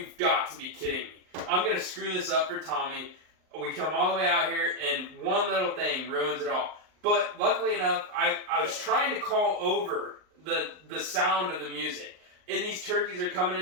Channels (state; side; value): late; left; 38 ms